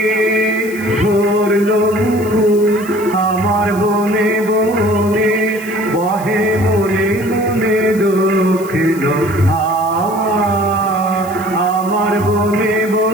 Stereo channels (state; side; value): noise; left; hiss, 18 dB below the sound